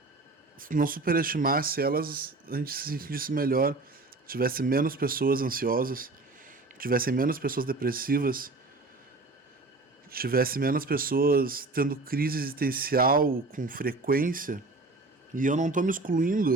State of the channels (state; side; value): quieter; left; 3.3 dB